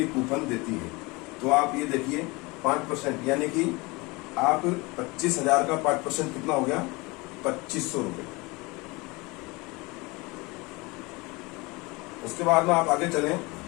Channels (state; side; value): quieter; right; 24.9 dB